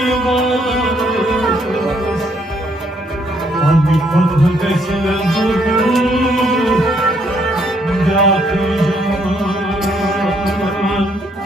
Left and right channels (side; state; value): both; normal; correlation 0.70